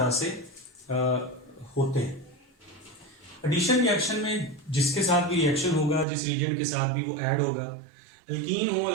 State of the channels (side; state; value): left; drops out; at 6.1 s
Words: से होते हैं। एडिशन रिएक्शन में जिसके साथ भी रिएक्शन होगा, जिस रिएजेंट के साथ भी वो ऐड होगा, अल्कीन हो,